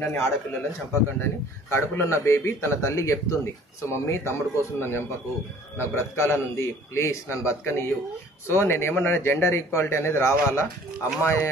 ఆడపిల్లలని చంపకండి అని. కడుపులో ఉన్న బేబీ తన తల్లి చెప్తుంది, సో మమ్మీ తమ్ముడు కోసం నన్ను చంపకు, నాకు బ్రతకాలని ఉంది, ప్లీజ్ నన్ను బతకనియ్యు. సో నేను ఏమన్నా జెండర్ ఈక్వాలిటీ అనేది రావాలా, అమ్మాయి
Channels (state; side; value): normal; both; correlation 0.52